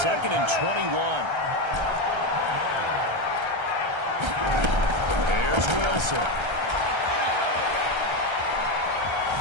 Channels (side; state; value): left; late; 1.3 ms